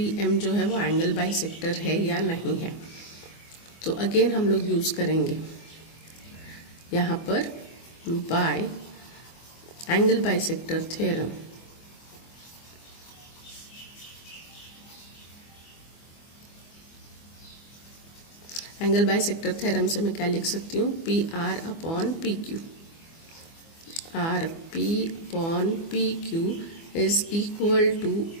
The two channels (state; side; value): late; right; 24 ms